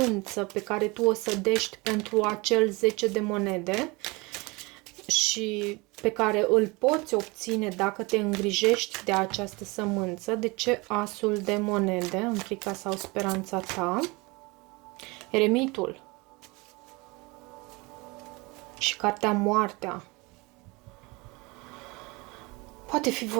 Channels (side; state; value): left; quieter; 25.3 dB